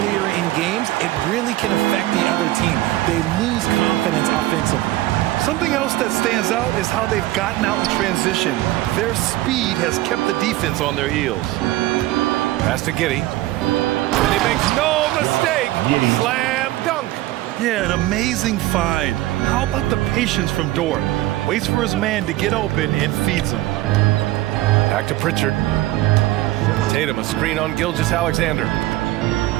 in games, it really can affect the other team. They lose confidence offensively. Something else that stands out is how they've gotten out in transition. Their speed has kept the defense on their heels. Pass to Giddey. And he makes no mistake. Slam dunk. Yeah, an amazing find. How about the patience from Dort? Waits for his man to get open and feeds him. Back to Pritchard. Tatum a screen on Gilgeous-Alexander.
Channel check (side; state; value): left; quieter; 16.7 dB